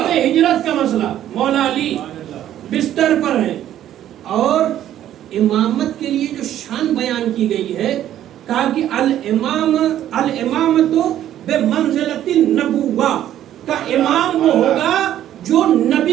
ہجرت کا مسئلہ, مولا علی بستر پر ہے اور امامت کے لیے جو شان بیان کی گئی ہے, کہا کہ الامامت بمنزلت النبوہ, کا امام وہ ہوگا جو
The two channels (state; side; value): quieter; left; 11.7 dB